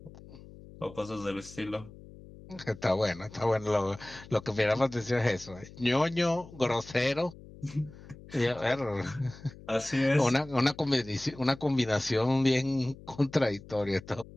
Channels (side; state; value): left; noise; hum, 18 dB below the sound